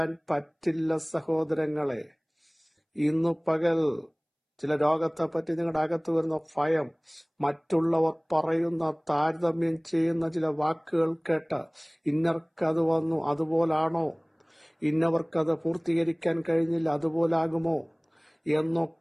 പറ്റില്ല സഹോദരങ്ങളെ. ഇന്നു പകൽ ചില രോഗത്തെപ്പറ്റി നിങ്ങളുടെ അകത്ത് വരുന്ന ഭയം, മറ്റുള്ളവർ പറയുന്ന താരതമ്യം ചെയ്യുന്ന ചില വാക്കുകൾ കേട്ട് ഇന്നർക്കത് വന്നു അതുപോലാണോ, ഇന്നവർക്കത് പൂർത്തീകരിക്കാൻ കഴിഞ്ഞില്ല അതുപോലാകുമോ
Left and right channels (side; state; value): both; identical; correlation 1.00